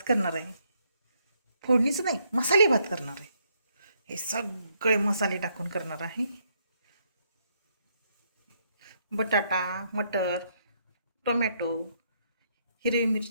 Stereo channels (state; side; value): inverted; both; correlation -0.73